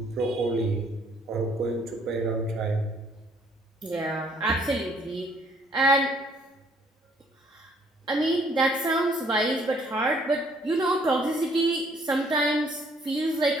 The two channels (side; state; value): both; normal; correlation 0.63